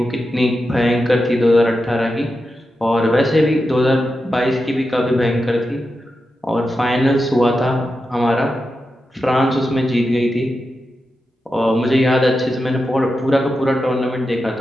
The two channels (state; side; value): normal; both; correlation 0.89